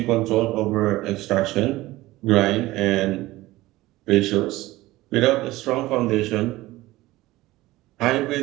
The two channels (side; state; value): left; quieter; 18.1 dB